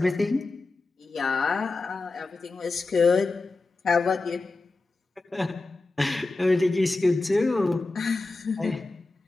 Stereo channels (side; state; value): right; quieter; 3.4 dB